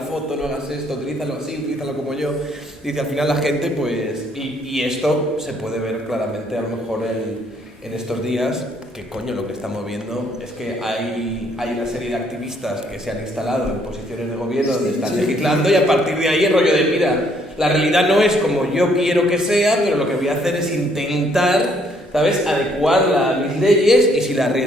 foto, no hagas esto, utilízalo así, utilízalo como yo. Dice, al final la gente, pues, y esto se puede ver claramente a lo mejor en estos días, que coño, lo que estamos viendo es que hay una serie de activistas que se han instalado en posiciones de gobierno donde están legislando, y a partir de ahí el rollo de, mira, la realidad no es como yo quiero que sea, pero lo que voy a hacer es intentar, ¿sabes?, adecuarla a mis leyes, y si la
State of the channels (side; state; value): both; normal; correlation 0.67